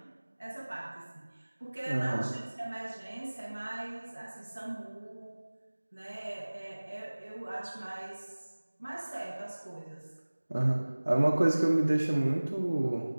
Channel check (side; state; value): both; inverted; correlation -1.00